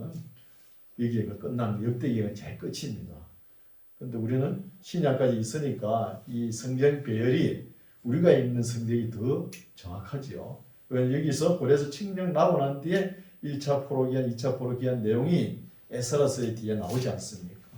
여기가 끝나는 역대기가 제일 끝입니다. 그런데 우리는 신약까지 있으니까 이 성경 배열이 우리가 읽는 성경이 더 정확하지요. 왜냐면 여기서 그래서 칙령 나고 난 뒤에 1차 포로기한, 2차 포로기한 내용이 에스라서의 뒤에 나오지 않습니까?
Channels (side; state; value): both; identical; correlation 1.00